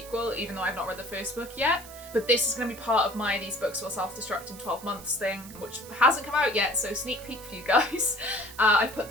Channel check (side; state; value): right; noise; hiss, 17 dB below the sound